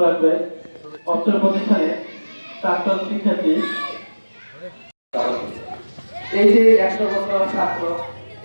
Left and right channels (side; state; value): both; inverted; correlation -1.00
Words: রাখবে পত্র প্রতিষ্ঠানে প্রাক্তন শিক্ষার্থী। এই যে 100 বছর ছাত্র